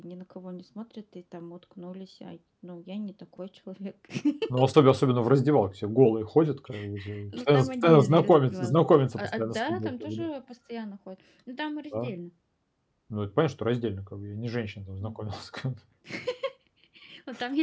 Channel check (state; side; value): identical; both; correlation 1.00